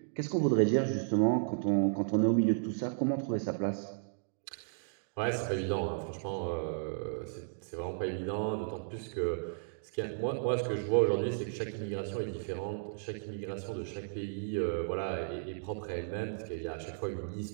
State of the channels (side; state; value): left; silent; digital silence